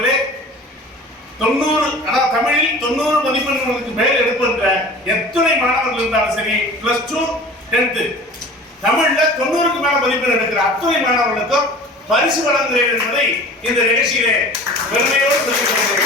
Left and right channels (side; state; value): both; normal; correlation 0.41